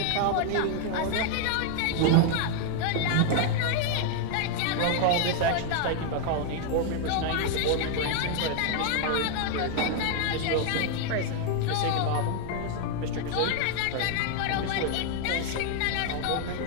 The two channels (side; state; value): both; different; correlation 0.00